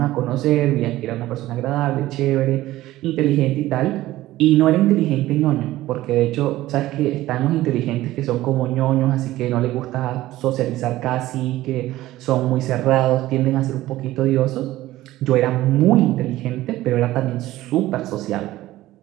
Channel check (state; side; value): quieter; left; 16.0 dB